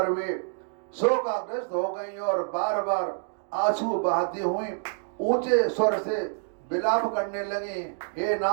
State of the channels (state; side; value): silent; left; digital silence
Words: वे शोकाग्रस्त हो गई और बार बार आंसू बहाती हुई ऊंचे स्वर से विलाप करने लगी, हे